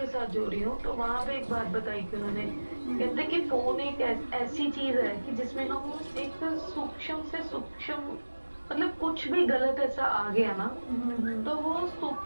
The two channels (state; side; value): inverted; both; correlation -1.00